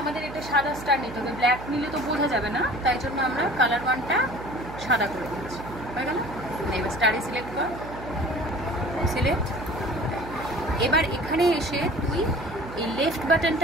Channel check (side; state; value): right; noise; hum, 12 dB below the sound